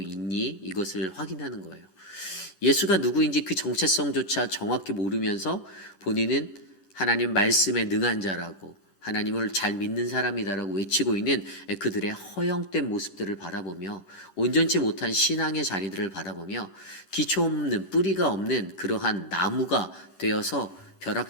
이것을 확인하는 거예요. 예수가 누구인지 그 정체성조차 정확히 모르면서 본인은 하나님 말씀에 능한 자라고 하나님을 잘 믿는 사람이다라고 외치고 있는 그들의 허영된 모습들을 바라보며 온전치 못한 신앙의 자리들을 바라보며 기초 없는, 뿌리가 없는 그러한 나무가 되어서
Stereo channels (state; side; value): late; right; 11 ms